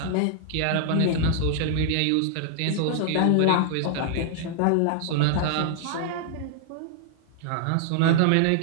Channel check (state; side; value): different; both; correlation -0.01